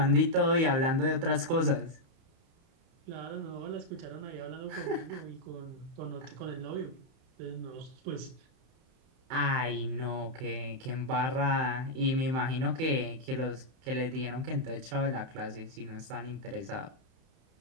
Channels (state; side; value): late; left; 31 ms